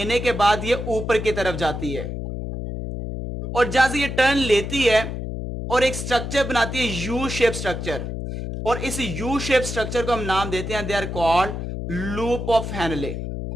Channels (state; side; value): noise; left; hum, 5 dB below the sound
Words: के बाद ये ऊपर की तरफ जाती है, और जहां से ये टर्न लेती है और एक स्ट्रक्चर बनाती है यू शेप स्ट्रक्चर, और इस यू शेप स्ट्रक्चर को हम नाम देते हैं, they are called loop of Henle.